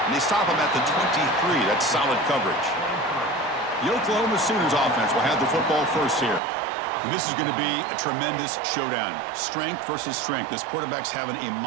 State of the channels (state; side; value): drops out; left; at 6.4 s